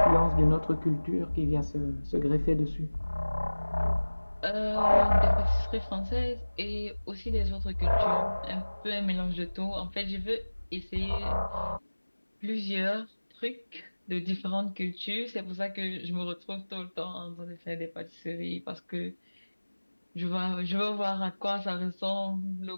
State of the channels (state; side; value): inverted; both; correlation -1.00